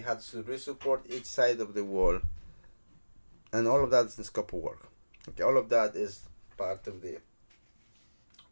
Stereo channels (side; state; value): both; inverted; correlation -1.00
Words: to re-support each side of the wall, and all of that is the scope of work. Okay, all of that is part of the